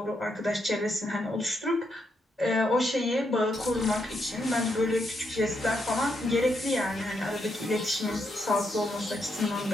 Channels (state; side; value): normal; both; correlation 0.79